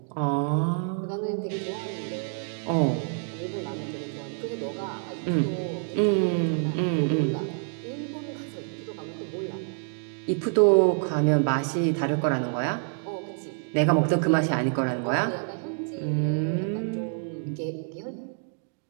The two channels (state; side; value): silent; left; 60 dB below the other